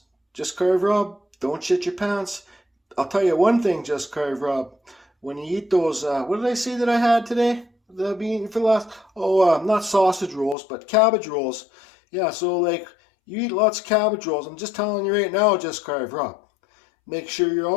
Just Carve Rob, don't shit your pants. I'll tell you one thing, Just Carve Rob. When you eat those, what did I say that I had today? That I've been eating for the last, not sausage rolls, but cabbage rolls. Yeah, so like, you eat lots of cabbage rolls. I'm just telling you right now, Just Carve Rob. Make sure you're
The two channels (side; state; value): right; drops out; at 10.6 s